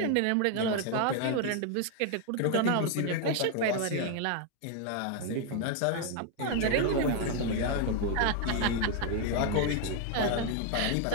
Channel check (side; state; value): both; different; correlation 0.01